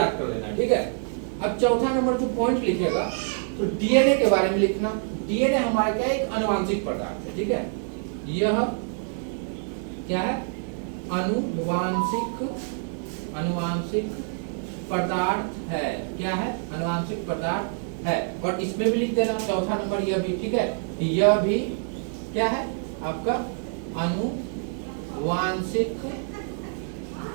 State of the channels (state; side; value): silent; left; 56 dB below the other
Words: कर लेना, ठीक है। अब चौथा नंबर जो पॉइंट लिखेगा, तो डीएनए के बारे में लिखना। डीएनए हमारा क्या है, एक अनुवांशिक पदार्थ है, ठीक है। यह क्या है, अनुवांशिक पदार्थ है। क्या है, अनुवांशिक पदार्थ है। और इसमें भी लिख देना चौथा नंबर, यह भी, ठीक है, यह भी क्या है आपका, अनुवांशिक